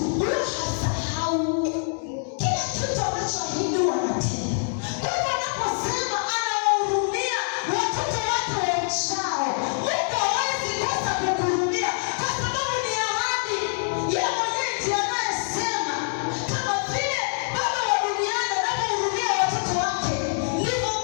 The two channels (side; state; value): right; silent; digital silence